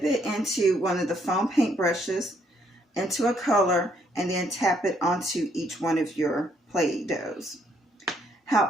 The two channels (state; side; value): normal; both; correlation 0.70